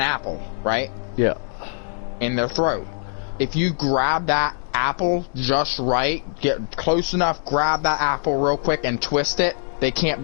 right? Yeah. In their throat. If you grab that apple just right, get close enough, grab that apple real quick and twist it, they can't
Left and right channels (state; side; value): silent; right; digital silence